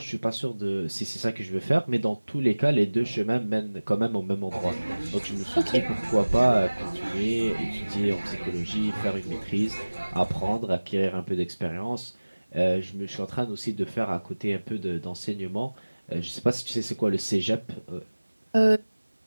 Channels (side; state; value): both; inverted; correlation -1.00